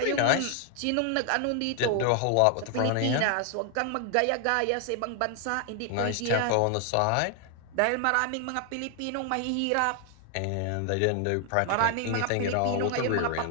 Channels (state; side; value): different; both; correlation 0.00